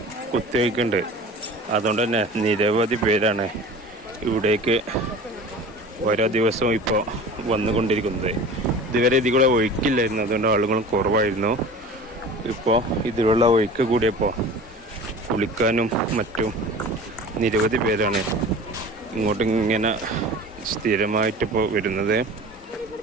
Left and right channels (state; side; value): normal; both; correlation 0.39